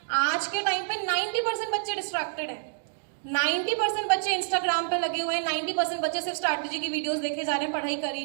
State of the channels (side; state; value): left; silent; digital silence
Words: आज के टाइम पे 90% बच्चे डिस्ट्रैक्टेड हैं, 90% बच्चे इंस्टाग्राम पे लगे हुए हैं, 90% बच्चे सिर्फ स्ट्रैटेजी की वीडियोस देखे जा रहे हैं, पढ़ाई कर ही